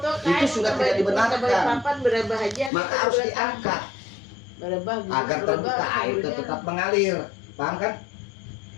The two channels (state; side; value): drops out; right; at 2.7 s